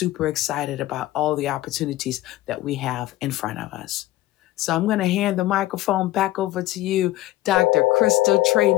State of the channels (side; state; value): right; quieter; 16.2 dB